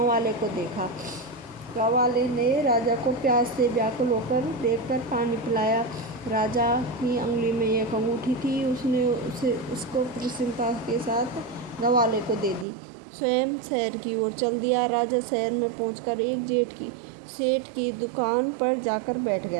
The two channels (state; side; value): drops out; left; at 12.7 s